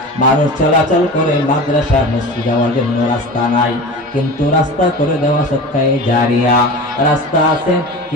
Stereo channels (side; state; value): both; normal; correlation 0.32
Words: মানুষ চলাচল করে, মাদ্রাসা মসজিদ যাওয়ার জন্য রাস্তা নাই, কিন্তু রাস্তা করে দেওয়া সদকায়ে জারিয়া। রাস্তা আছে